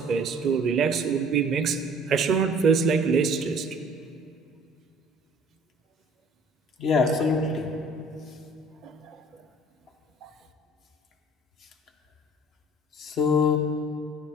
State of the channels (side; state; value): both; normal; correlation 0.51